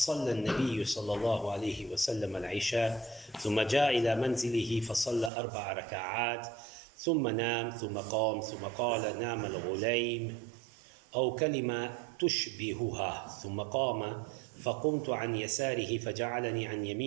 النبي صلى الله عليه وسلم العشاء ثم جاء إلى منزله فصلى 4 ركعات ثم نام ثم قام ثم قال نام الغليم أو كلمة تشبهها ثم قام فقمت عن يساره فجعلني عن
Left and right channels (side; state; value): left; drops out; at 5.3 s